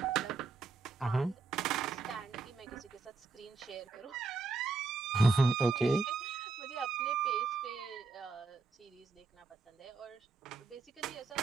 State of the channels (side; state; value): left; quieter; 4.1 dB